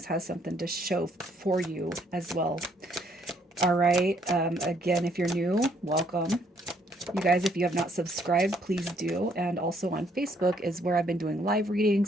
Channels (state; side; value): normal; both; correlation 0.68